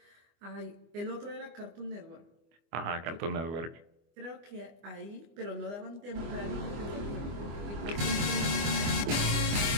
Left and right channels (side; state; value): left; late; 25 ms